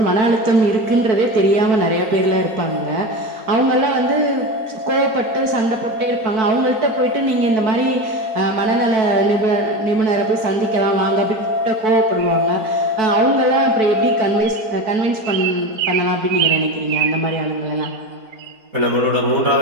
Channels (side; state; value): left; late; 4.6 ms